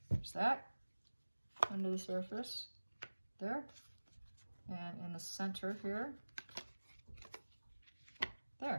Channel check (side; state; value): both; inverted; correlation -1.00